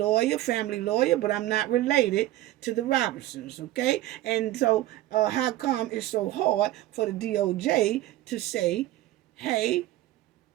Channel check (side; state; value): left; quieter; 15.5 dB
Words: family lawyer, but I'm not related to the Robinsons, okay? And so how come it's so hard for the DOJ to say, hey,